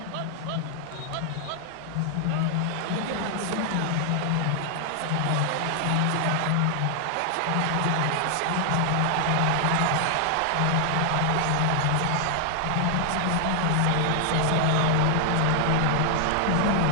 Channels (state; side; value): different; both; correlation 0.00